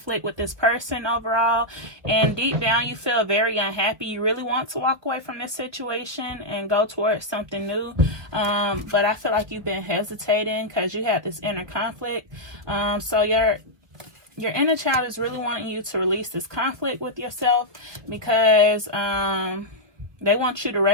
with this person overall, and deep down you feel very unhappy. You really want to walk away from this situation and go towards something new, but I feel like you've been hesitating because you had this inner conflict. So your inner child is really wanting you to release this conflict with yourself, because they want you to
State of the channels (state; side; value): late; left; 1.2 ms